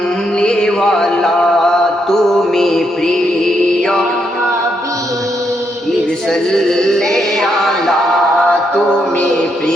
তুমি প্রিয় হাবিব সাল্লে আলা, তুমি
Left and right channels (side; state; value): both; normal; correlation 0.78